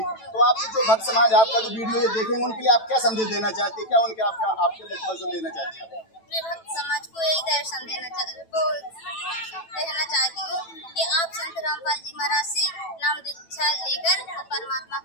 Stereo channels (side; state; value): right; late; 9.1 ms